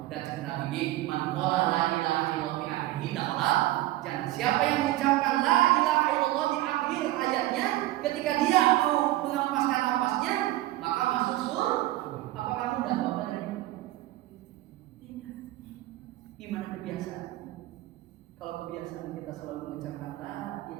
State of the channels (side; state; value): left; quieter; 16.3 dB